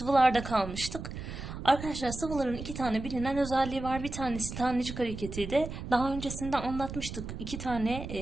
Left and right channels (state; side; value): noise; right; rumble, 9 dB below the sound